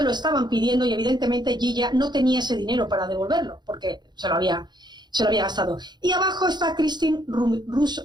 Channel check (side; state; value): left; late; 0.21 ms